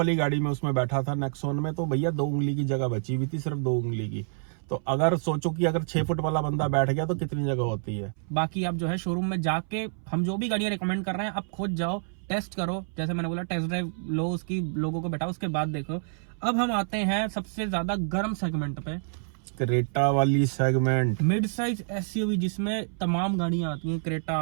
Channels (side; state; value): left; silent; 60 dB below the other